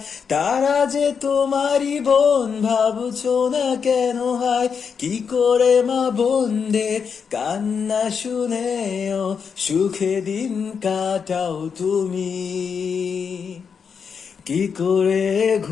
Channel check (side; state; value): right; quieter; 6.3 dB